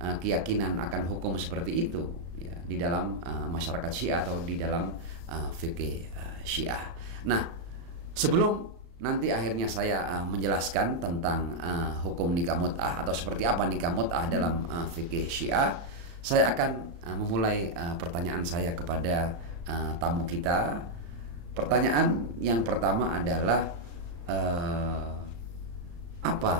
keyakinan akan hukum seperti itu ya, di dalam masyarakat Syiah atau di dalam fikih Syiah. Nah, sebelum nanti akhirnya saya menjelaskan tentang hukum nikah mut'ah atau seperti apa nikah mut'ah dalam fikih Syiah, saya akan memulai pertanyaan saya kepada tamu kita. Pertanyaan yang pertama adalah apa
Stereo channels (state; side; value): late; left; 35 ms